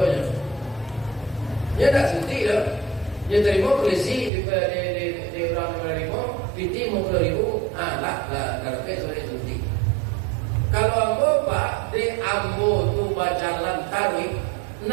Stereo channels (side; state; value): left; drops out; at 4.3 s